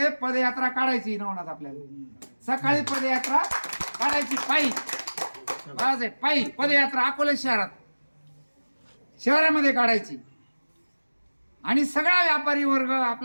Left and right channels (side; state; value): both; inverted; correlation -1.00